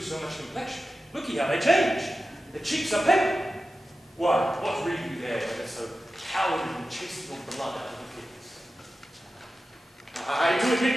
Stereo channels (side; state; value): both; normal; correlation 0.93